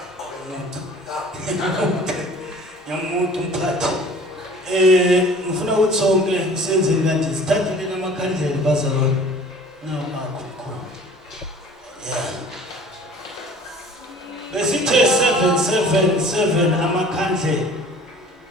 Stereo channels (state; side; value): normal; both; correlation 0.47